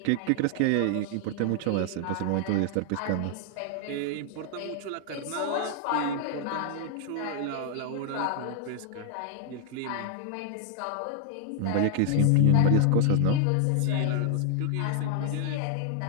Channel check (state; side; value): different; both; correlation 0.00